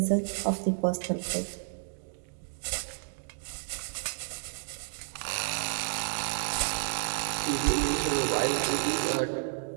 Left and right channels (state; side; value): silent; left; digital silence